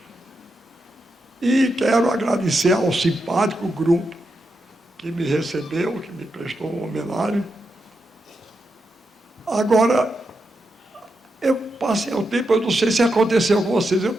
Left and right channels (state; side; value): normal; both; correlation 0.86